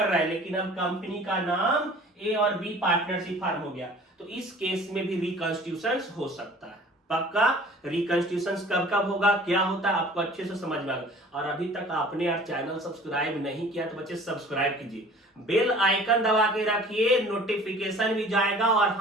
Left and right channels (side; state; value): both; normal; correlation 0.48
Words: रहा है, लेकिन अब कंपनी का नाम ए और बी पार्टनरशिप फर्म हो गया। तो इस केस में भी रिकॉन्स्टिट्यूशन हो सकता है। पक्का रिकॉन्स्टिट्यूशन कब कब होगा, क्या होता है, आपको अच्छे से समझ में आएगा। और अभी तक आपने यार चैनल सब्सक्राइब नहीं किया तो बच्चे सब्सक्राइब कीजिए, बेल आइकन दबा के रखिए, नोटिफिकेशन भी जाएगा। और